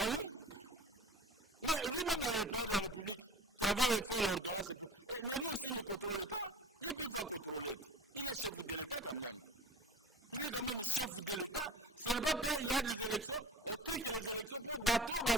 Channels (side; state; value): both; normal; correlation 0.39